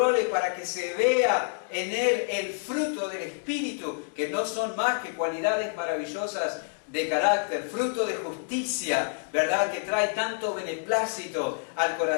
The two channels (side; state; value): right; silent; digital silence